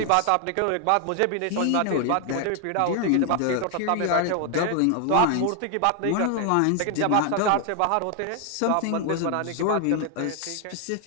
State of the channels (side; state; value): both; different; correlation 0.00